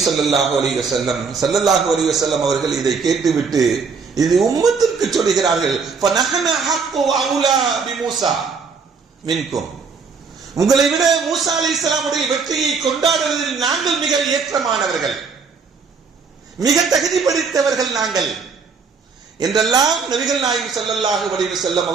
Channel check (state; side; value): quieter; left; 5.2 dB